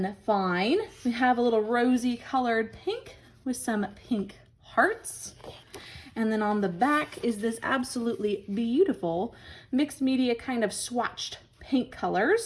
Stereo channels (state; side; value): identical; both; correlation 1.00